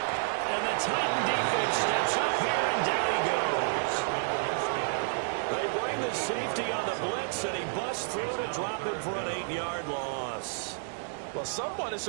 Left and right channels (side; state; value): left; silent; 58 dB below the other